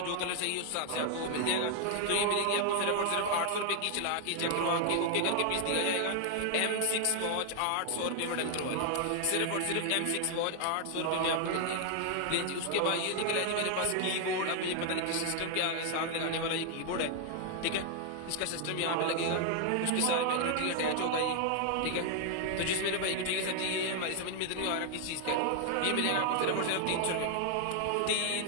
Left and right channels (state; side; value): different; both; correlation 0.00